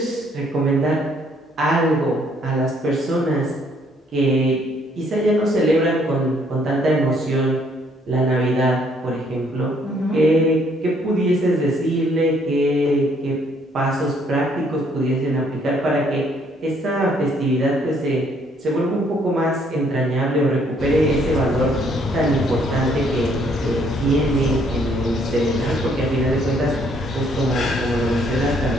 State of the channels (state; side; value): normal; both; correlation 0.66